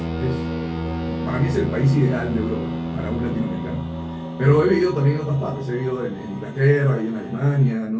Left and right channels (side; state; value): both; identical; correlation 1.00